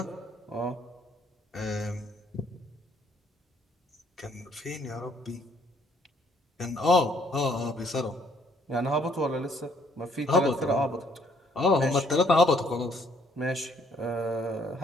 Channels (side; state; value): both; normal; correlation 0.65